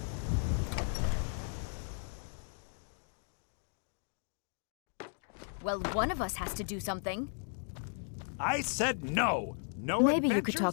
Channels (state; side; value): silent; right; 54 dB below the other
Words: Well, one of us has to do something. I said no. No. Maybe you could